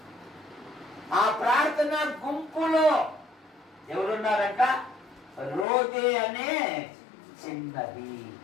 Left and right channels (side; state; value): right; drops out; at 5.7 s